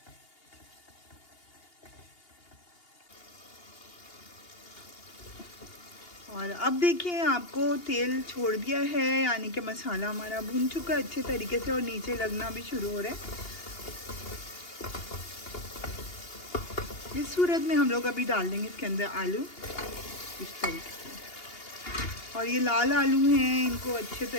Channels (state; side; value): late; right; 2.8 ms